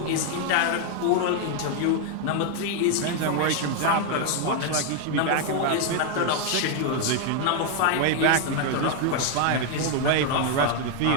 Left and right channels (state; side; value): different; both; correlation 0.01